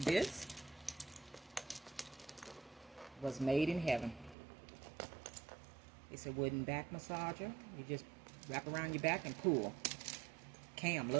was made in heaven. It's a wooden back massager. You just wrap around your back and pull. Cam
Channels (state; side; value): drops out; left; at 4.4 s